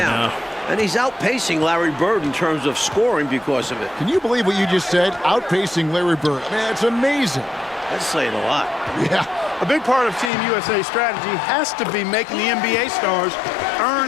And he's outpacing Larry Bird in terms of scoring because of it. Can you believe what you just said? Outpacing Larry Bird. Man, it's amazing. That's saying a lot. Yeah. A big part of Team USA's strategy has to be making the NBA stars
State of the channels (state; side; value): drops out; right; at 10.3 s